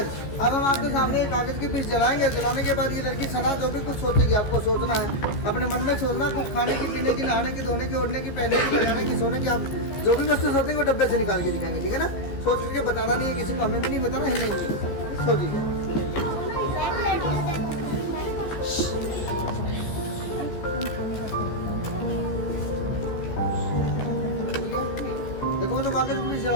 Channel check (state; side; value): late; right; 14 ms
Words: अब हम आपके सामने कागज के पीस जलाएंगे। जलाने के बाद ये लड़की सना जो भी कुछ सोचेगी, आपको सोचना है, अपने मन में सोचना, कुछ खाने की, पीने की, नहाने की, धोने की, ओढ़ने की, पहनने की, लगाने की, सोने की, आप जो भी वस्तु सोचेंगे वो डब्बे से निकाल के दिखाएंगे, ठीक है ना? सोच करके बताना नहीं है किसी को, हमें भी नहीं बताना, है नहीं सोचिए। देखो तो कागज भी